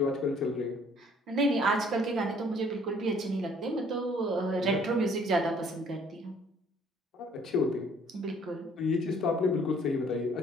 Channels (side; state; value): both; normal; correlation 0.59